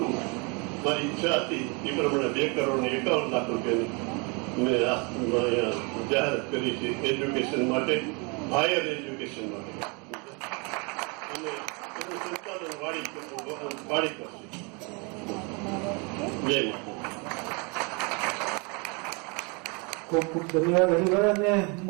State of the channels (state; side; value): quieter; left; 31.6 dB